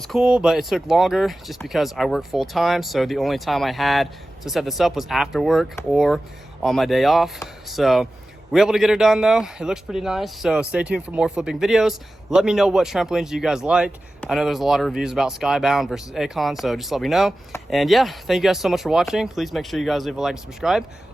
cool, but it took longer just because I work full time. So the only time I had to set this up was after work or on my day off. So we were able to get it done though. It looks pretty nice. So stay tuned for more flipping videos. Let me know what trampolines you guys like. I know there's a lot of reviews about Skybound versus Acon, so just let me know. And yeah, thank you guys so much for watching. Please make sure you guys leave a like and subscribe.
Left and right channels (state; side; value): normal; both; correlation 0.95